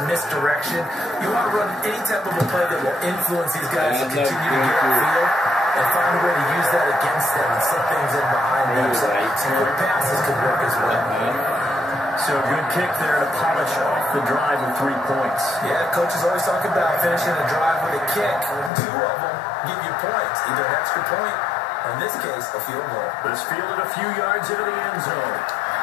misdirection. You want to run any type of a play that will influence these guys to continue to get upfield and find a way to use that against them and set things in behind them. So some quick passes could work as well. So a good kick there to polish off the drive with 3 points. Yeah, coaches always talk about finishing a drive with a kick. 2 of them give you points, either an extra point, or in this case, a field goal. This fielded a few yards into the end zone.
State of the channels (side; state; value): right; drops out; at 18.7 s